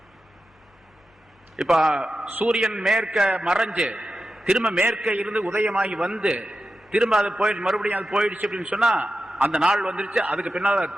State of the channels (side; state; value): both; normal; correlation 0.91